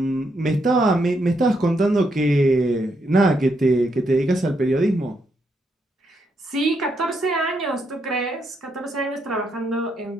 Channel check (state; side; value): normal; both; correlation 0.78